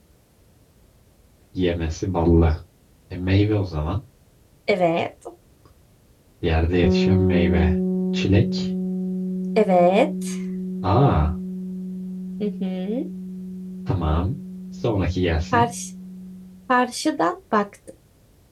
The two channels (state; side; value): identical; both; correlation 1.00